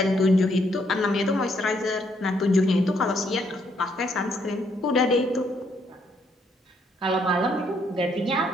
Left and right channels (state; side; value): normal; both; correlation 0.72